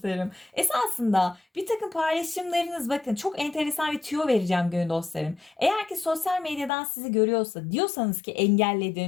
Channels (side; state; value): right; drops out; at 6.7 s